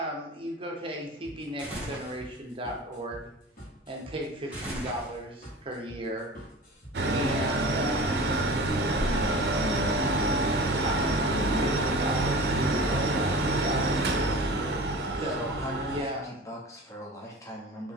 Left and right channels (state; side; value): normal; both; correlation 0.36